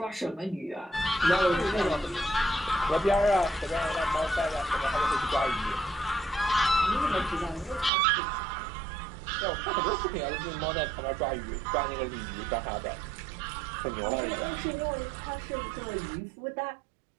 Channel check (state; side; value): drops out; left; at 7.9 s